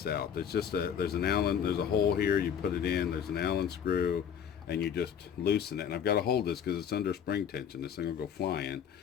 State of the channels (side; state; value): right; quieter; 8.3 dB